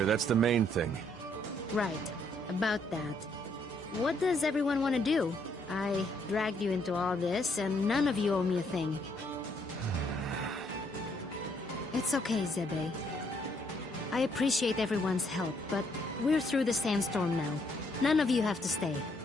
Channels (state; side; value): normal; both; correlation 0.70